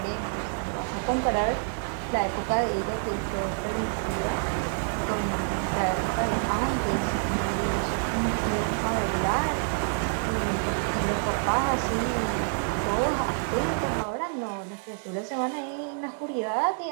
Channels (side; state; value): left; silent; 58 dB below the other